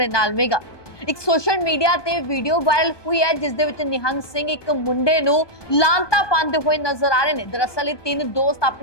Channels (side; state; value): right; late; 1.2 ms